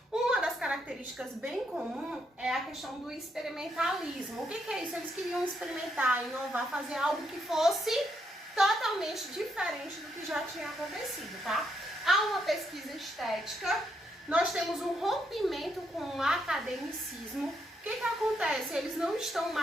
Uma das características bem comum é a questão do experimentalismo. O que é isso? Eles queriam experimentar, inovar, fazer algo que fosse totalmente diferente do que já tinha acontecido, tá? Há uma pesquisa estética, nós temos um rompimento com o academicismo. O que acontece? Eles não estão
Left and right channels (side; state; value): both; normal; correlation 0.77